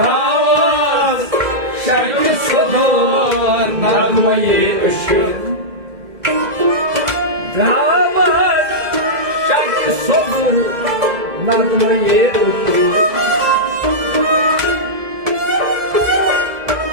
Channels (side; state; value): left; late; 2.0 ms